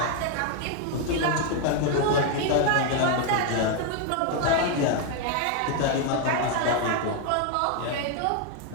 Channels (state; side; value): different; both; correlation 0.01